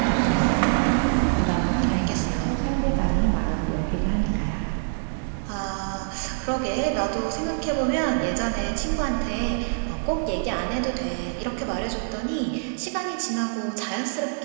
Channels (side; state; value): left; silent; digital silence